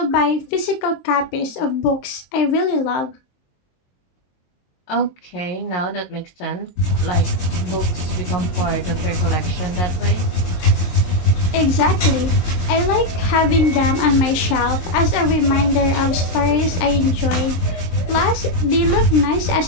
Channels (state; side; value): late; right; 23 ms